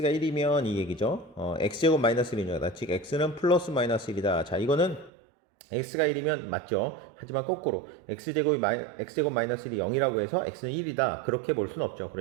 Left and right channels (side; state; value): left; drops out; at 5.1 s